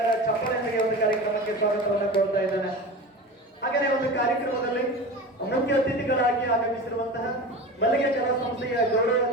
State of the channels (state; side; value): normal; both; correlation 0.31